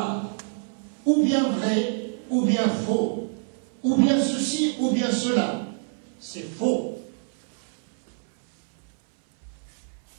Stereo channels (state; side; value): silent; left; 61 dB below the other